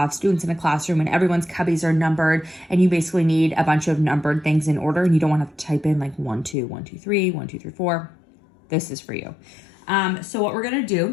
students in a classroom and everyone's cubbies are numbered, and you basically need a bunch of numbered things in order, and you don't want to type in like 1 2 1 2 3 1 2 3 4. This is for you. So what we're going to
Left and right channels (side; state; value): right; drops out; at 6.6 s